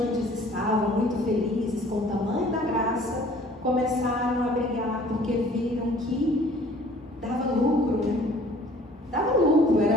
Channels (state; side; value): normal; both; correlation 0.53